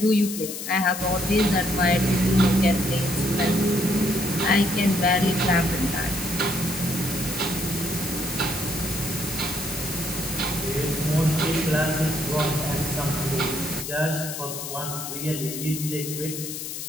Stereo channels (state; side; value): noise; left; hiss, 7 dB below the sound